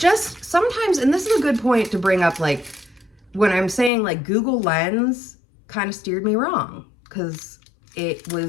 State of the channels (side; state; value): right; drops out; at 3.9 s